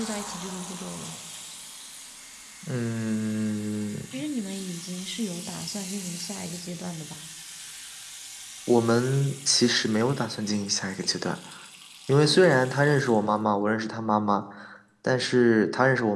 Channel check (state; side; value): identical; both; correlation 1.00